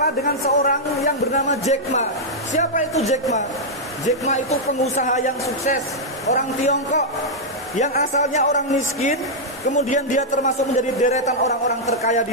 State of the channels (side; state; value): both; normal; correlation -0.06